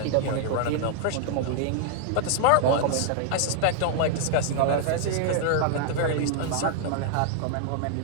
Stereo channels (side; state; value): both; different; correlation 0.00